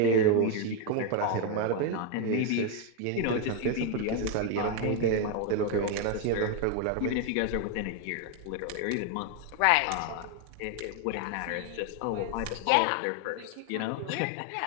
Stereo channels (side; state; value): both; different; correlation 0.01